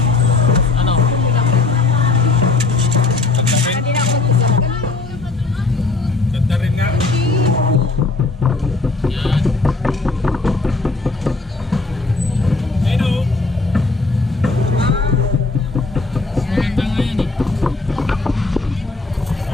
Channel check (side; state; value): right; quieter; 3.8 dB